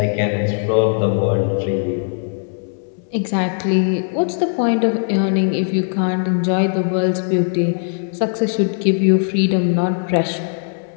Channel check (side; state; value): right; silent; digital silence